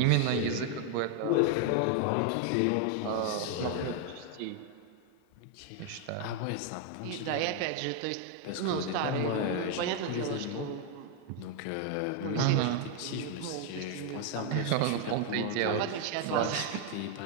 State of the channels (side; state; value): both; different; correlation 0.00